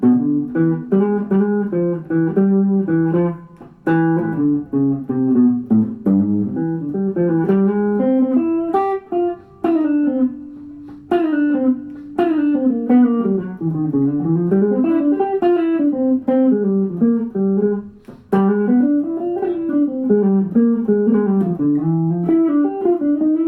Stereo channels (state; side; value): identical; both; correlation 1.00